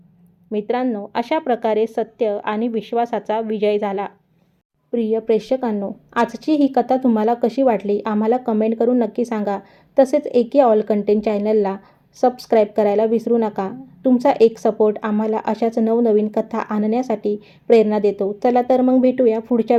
मित्रांनो, अशा प्रकारे सत्य आणि विश्वासाचा विजय झाला. प्रिय प्रेक्षकांनो, आजची ही कथा तुम्हाला कशी वाटली आम्हाला कमेंट करून नक्की सांगा. तसेच एके ऑल कंटेंट चॅनलला सबस्क्राईब करायला विसरू नका. तुमचा एक सपोर्ट आम्हाला अशाच नवनवीन कथा आणण्यासाठी प्रेरणा देतो. चला तर मग भेटूया पुढच्या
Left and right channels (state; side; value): identical; both; correlation 1.00